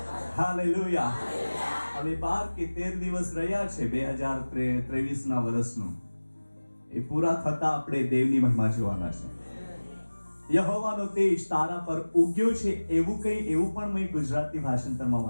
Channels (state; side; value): inverted; both; correlation -1.00